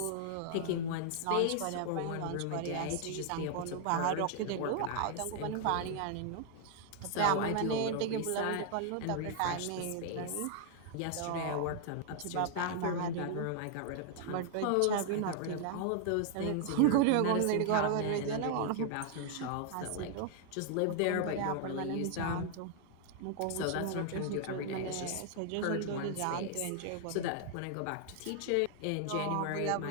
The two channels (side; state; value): both; different; correlation 0.00